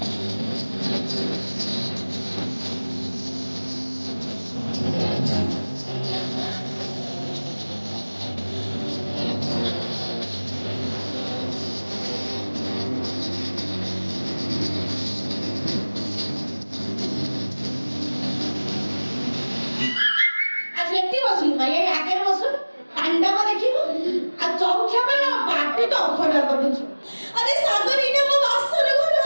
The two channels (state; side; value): inverted; both; correlation -1.00